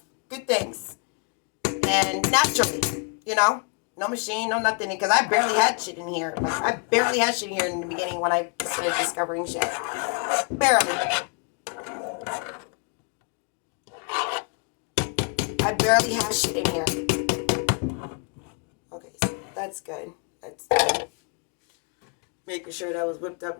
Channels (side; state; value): right; quieter; 37.8 dB